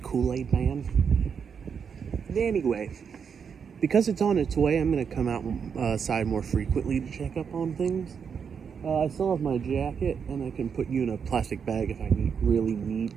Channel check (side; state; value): left; quieter; 6.7 dB